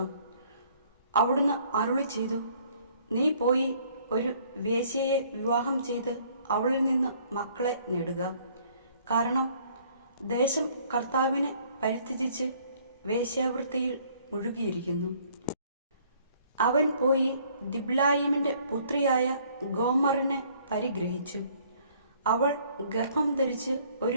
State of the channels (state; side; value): inverted; both; correlation -0.60